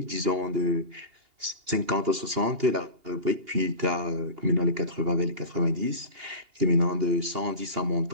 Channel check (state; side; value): late; left; 2.8 ms